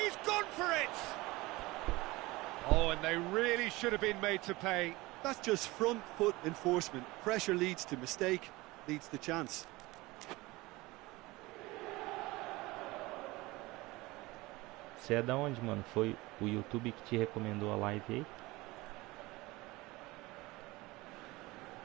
gone for it! Oh, and they really should have been made to pay. That's just front foot enforcement. Pressure leads to mistake, leads to chance. Você é da onde, mano? Foi o YouTube que te recomendou a live aí?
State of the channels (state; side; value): quieter; left; 21.1 dB